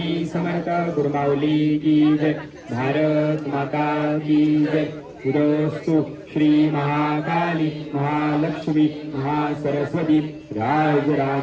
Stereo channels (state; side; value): identical; both; correlation 1.00